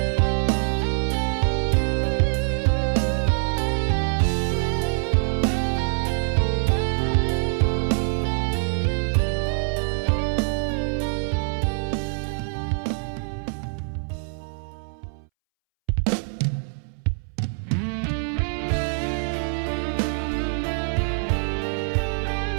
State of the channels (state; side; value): silent; left; 62 dB below the other